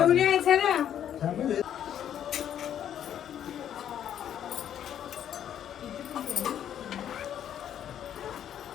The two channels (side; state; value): right; quieter; 10.0 dB